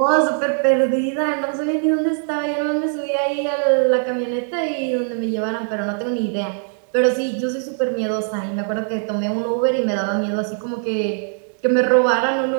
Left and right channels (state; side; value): silent; left; 64 dB below the other